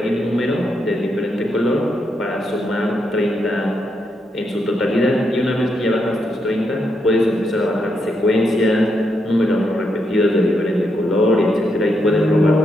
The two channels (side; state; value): both; normal; correlation 0.81